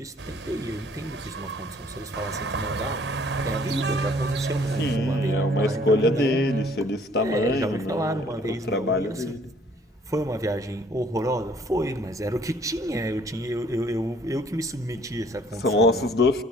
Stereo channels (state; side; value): normal; both; correlation 0.59